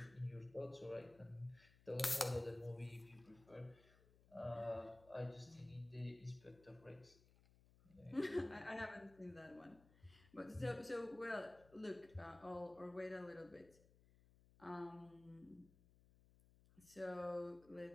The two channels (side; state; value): left; noise; hum, 24 dB below the sound